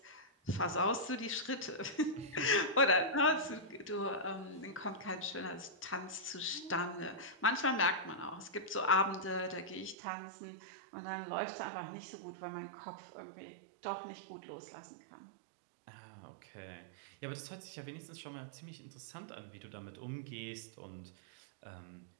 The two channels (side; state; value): left; drops out; at 10.0 s